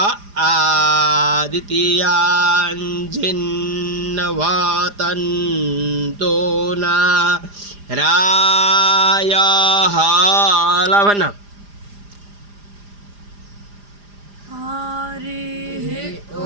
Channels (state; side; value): late; left; 4.9 ms